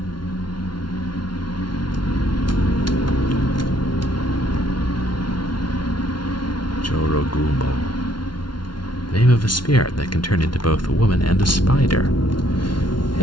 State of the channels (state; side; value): late; right; 0.71 ms